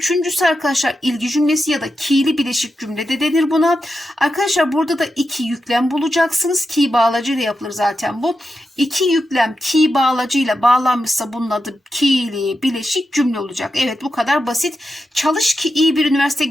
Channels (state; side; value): normal; both; correlation 0.88